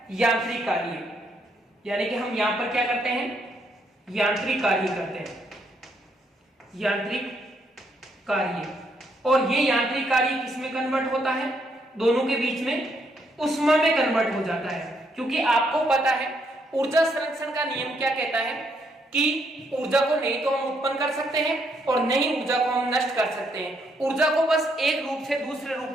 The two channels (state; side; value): normal; both; correlation 0.74